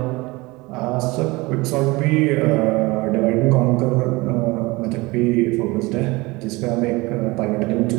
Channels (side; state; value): left; quieter; 22.8 dB